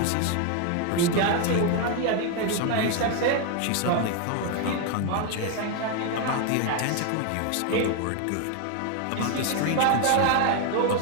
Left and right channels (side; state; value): both; different; correlation 0.01